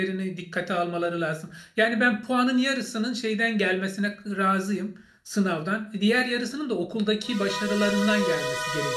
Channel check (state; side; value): identical; both; correlation 1.00